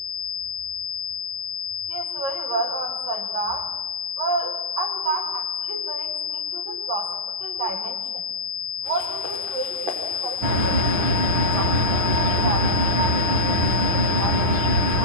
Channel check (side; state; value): left; late; 9.9 ms